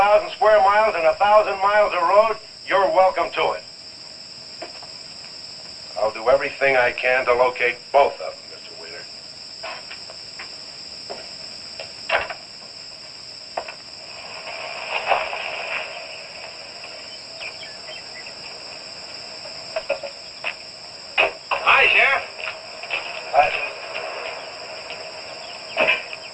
square miles and 1,000 miles of road, you're welcome to it. I'll do everything I can to locate both of them, Mr. Wheeler. Hi, Sheriff.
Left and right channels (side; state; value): both; identical; correlation 1.00